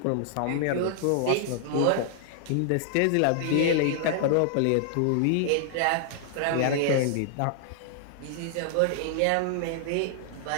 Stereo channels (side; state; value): both; different; correlation -0.01